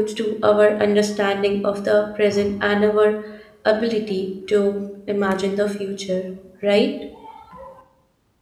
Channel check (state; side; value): identical; both; correlation 1.00